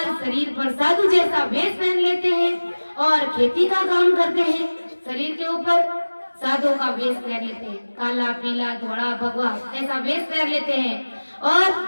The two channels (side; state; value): both; inverted; correlation -1.00